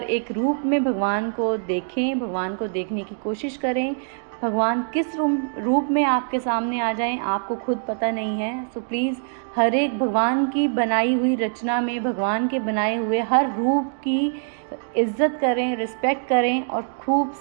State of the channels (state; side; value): silent; left; digital silence